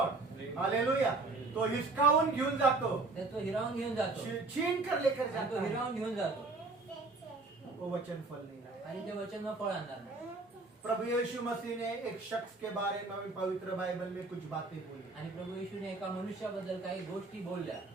हालेलुया। तो हिसकावून घेऊन जातो, तर तो हिरावून घेऊन जातो. छीन कर लेकर आणि जाता तो है, हिरावून घेऊन जातो वो वचन फल नहीं लाया। आणि ते वचन मग फळ आणणार नाही. प्रभु यीशु मसीह ने एक शख्स के बारे में पवित्र बाइबल में कुछ बातें बोली, आणि प्रभू येशूने एका मनुष्याबद्दल काही गोष्टी बोलल्या.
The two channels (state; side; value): quieter; left; 3.5 dB